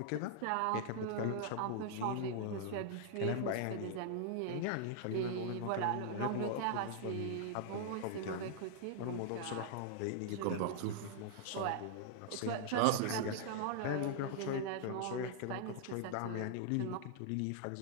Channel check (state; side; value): different; both; correlation -0.01